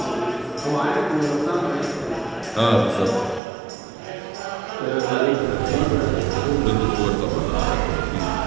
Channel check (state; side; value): drops out; left; at 3.4 s